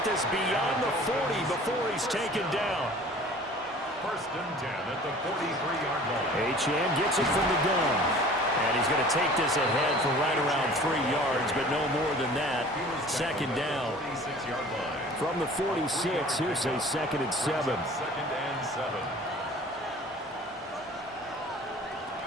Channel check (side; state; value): both; normal; correlation 0.46